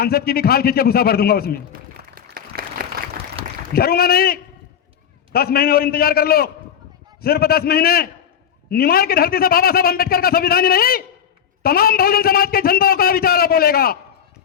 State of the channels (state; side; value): quieter; right; 8.6 dB